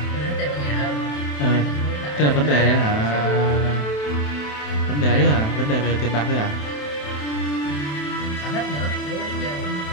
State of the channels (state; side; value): late; right; 27 ms